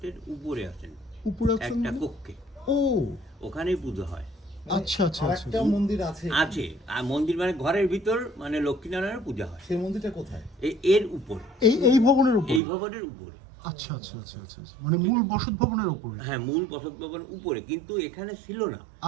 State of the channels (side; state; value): left; drops out; at 12.6 s